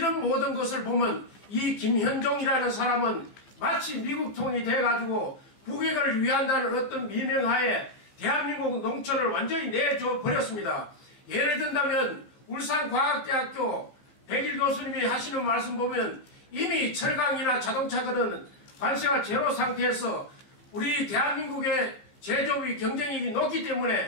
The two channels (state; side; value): late; right; 15 ms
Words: 모든 것을 보면 이 김현종이라는 사람은 마치 미국 통이 돼가지고 국익을 위한다는 어떤 미명하에 대한민국 농촌을 완전히 내줘 버렸습니다. 예를 든다면 울산과학대학교 백일 교수님이 하시는 말씀 보면 이미 철강이나 자동차들은 관세가 제로 상태에서 우리 대한민국의 제조업이 경쟁력이 높기